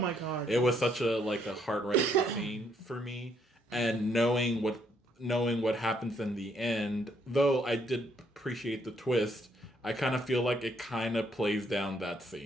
god. It was such a heart-wrenching scene for me, and knowing what happens in the end, though I did appreciate the twist, I kind of feel like it kind of plays down that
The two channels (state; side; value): normal; both; correlation 0.71